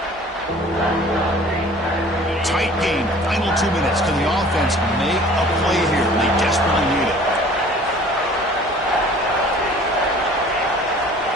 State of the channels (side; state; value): both; normal; correlation 0.49